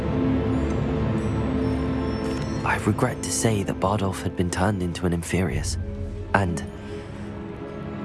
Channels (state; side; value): identical; both; correlation 1.00